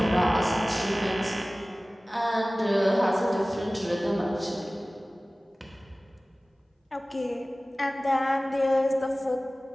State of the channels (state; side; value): normal; both; correlation 0.98